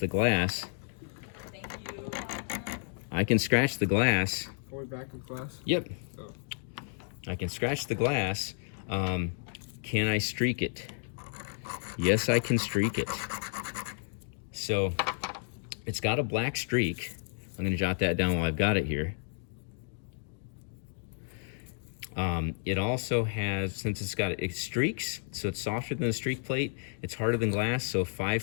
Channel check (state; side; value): silent; right; digital silence